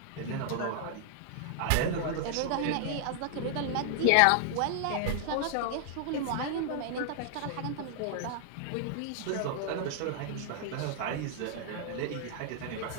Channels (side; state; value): both; different; correlation -0.01